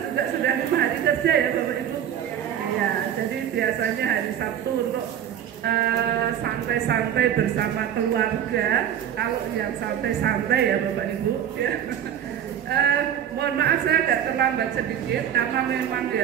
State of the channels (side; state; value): left; quieter; 9.8 dB